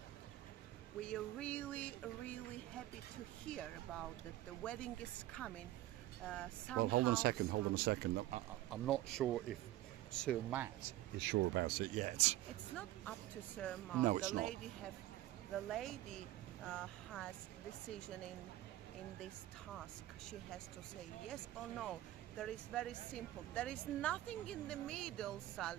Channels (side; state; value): left; quieter; 15.0 dB